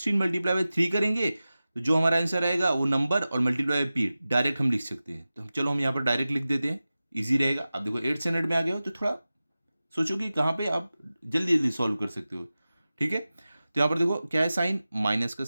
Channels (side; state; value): both; inverted; correlation -0.95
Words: मल्टीप्लाई बाय 3 करेंगे, तो जो हमारा आंसर आएगा वो नंबर और मल्टीप्लाई बाय p डायरेक्ट हम लिख सकते हैं। तो चलो हम यहाँ पर डायरेक्ट लिख देते हैं, इजी रहेगा। अब देखो 8 स्टैंडर्ड में आ गए हो तो थोड़ा सोचो कि कहाँ पे आप जल्दी जल्दी सॉल्व कर सकते हो। ठीक है, तो यहाँ पर देखो क्या है साइन, माइनस का